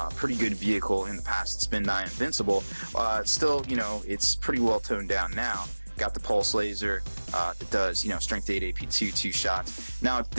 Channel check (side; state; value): both; inverted; correlation -1.00